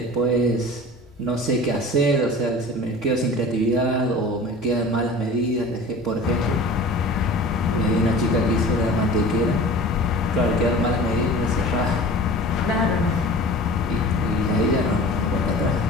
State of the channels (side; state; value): both; normal; correlation 0.39